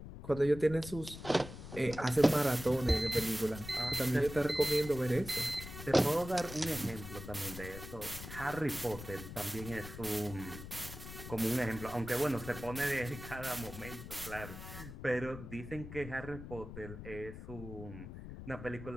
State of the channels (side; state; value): left; noise; rumble, 11 dB below the sound